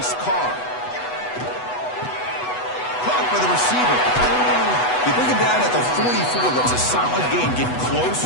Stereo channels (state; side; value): late; right; 8.1 ms